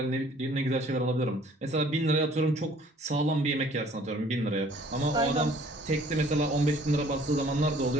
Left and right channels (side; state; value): both; normal; correlation 0.55